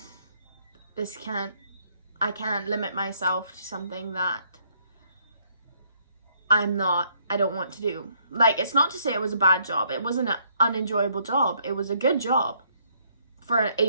I can't limit myself to something that I don't want to do. Like, it's not to say it was a bad job. It wasn't an unenjoyable job. It was a good job for an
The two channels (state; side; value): inverted; both; correlation -0.69